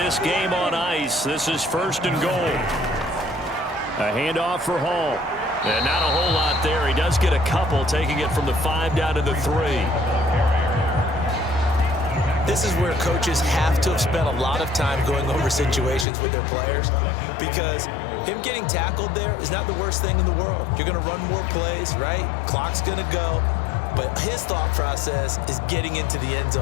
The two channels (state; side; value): drops out; right; at 16.1 s